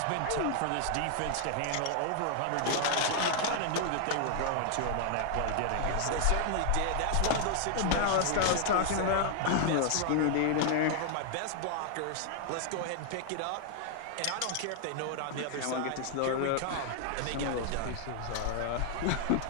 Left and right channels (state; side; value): different; both; correlation 0.00